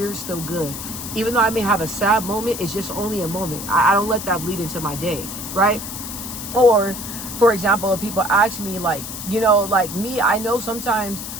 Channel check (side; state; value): left; noise; hiss, 8 dB below the sound